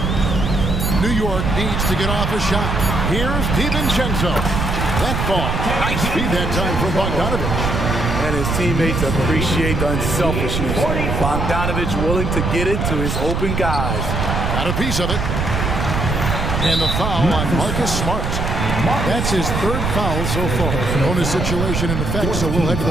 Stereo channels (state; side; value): noise; right; rumble, 1 dB below the sound